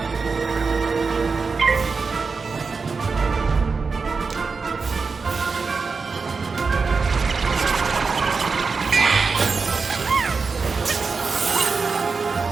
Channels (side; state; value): left; quieter; 4.7 dB